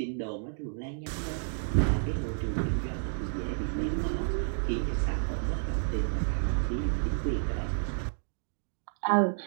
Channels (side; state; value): left; silent; digital silence